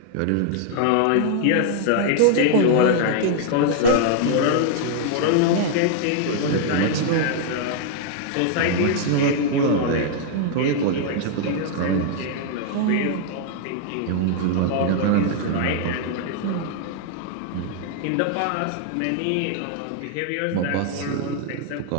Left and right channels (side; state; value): both; different; correlation 0.00